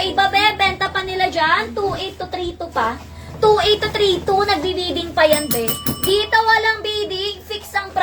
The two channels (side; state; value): both; identical; correlation 1.00